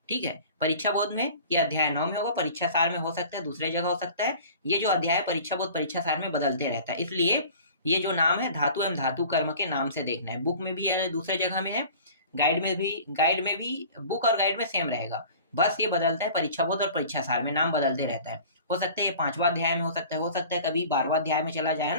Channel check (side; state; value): both; inverted; correlation -0.44